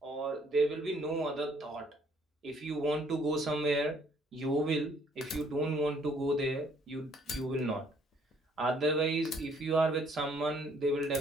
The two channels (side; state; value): both; normal; correlation 0.64